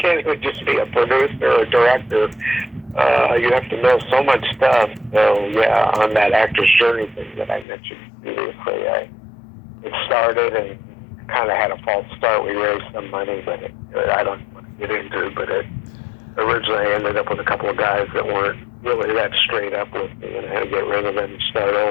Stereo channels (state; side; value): drops out; right; at 7.7 s